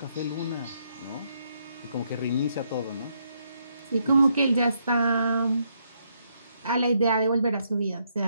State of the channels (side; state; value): both; inverted; correlation -0.76